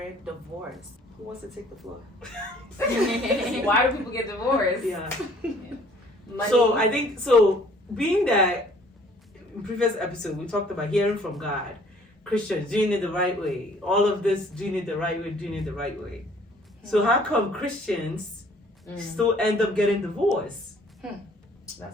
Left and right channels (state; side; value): normal; both; correlation 0.57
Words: divorce. Who wants to take the floor? Why do people get divorced? Yeah. Money. So I think, being that in previous episode we talked about hearing from God, Christians doing it the right way, all of this doing it the right way. So how come Christians still end up getting divorced?